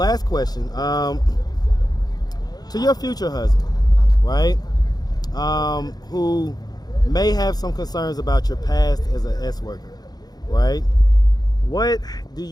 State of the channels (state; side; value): late; right; 0.19 ms